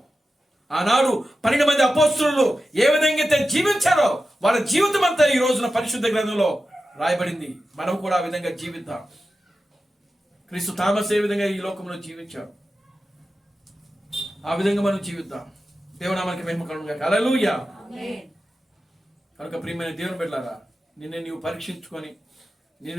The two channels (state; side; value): normal; both; correlation 0.92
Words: ఆనాడు 12 మంది అపోస్తలులు ఏ విధంగా అయితే జీవించారో వాళ్ళ జీవితం అంతా ఈ రోజున పరిశుద్ధ గ్రంథంలో రాయబడింది. మనం కూడా ఆ విధంగా జీవిద్దాం. క్రీస్తు థామస్ ఏ విధంగా ఈ లోకంలో జీవించారు ఆ విధంగా మనం జీవిద్దాం. దేవునామానికి మహిమ కలుగును గాక. హల్లెలూయా. కనుక ప్రియమైన దేవుని బిడ్డలారా నిన్ను నీవు పరీక్షించుకొని,